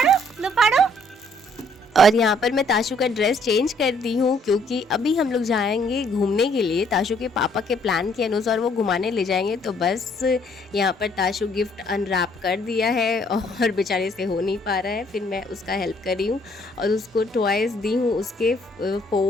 लो फाड़ो। और यहाँ पर मैं ताशु का ड्रेस चेंज कर दी हूँ क्योंकि अभी हम लोग जाएंगे घूमने के लिए। ताशु के पापा के प्लान के अनुसार वो घुमाने ले जाएंगे, तो बस यहाँ पर ताशु गिफ्ट अनरैप कर दिया है और बेचारे से हो नहीं पा रहा है। फिर मैं उसका हेल्प कर रही हूँ और उसको टॉयज़ दी हूँ। उसके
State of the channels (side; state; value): both; normal; correlation 0.65